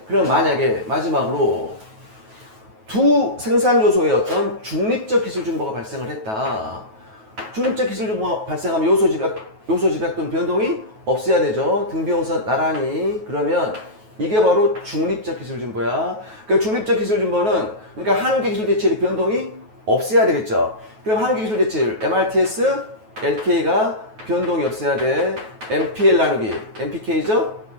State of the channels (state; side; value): late; left; 9.3 ms